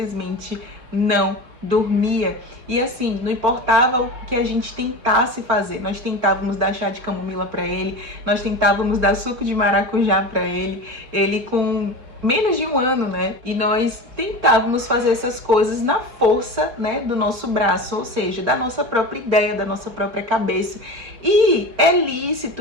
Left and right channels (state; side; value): late; left; 4.1 ms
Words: não dormia. E assim, não importava o que a gente tentasse fazer, nós tentávamos dar chá de camomila para ele, nós tentávamos dar suco de maracujá para ele, ele com menos de 1 ano, né? E nós tentávamos fazer essas coisas na força, né, do nosso braço, ou seja, da nossa própria ideia, da nossa própria cabeça. E é